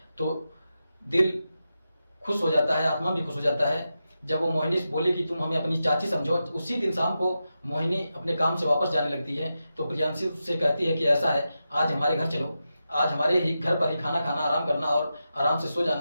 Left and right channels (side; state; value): both; inverted; correlation -0.90